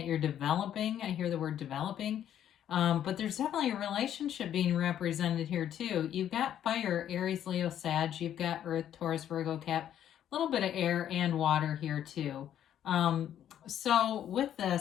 you're developing, I hear the word developing. But there's definitely a relationship being represented here too. You've got fire, Aries, Leo, Sag. You've got Earth, Taurus, Virgo, Cap. A little bit of air and water here too. So with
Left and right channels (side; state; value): right; quieter; 10.5 dB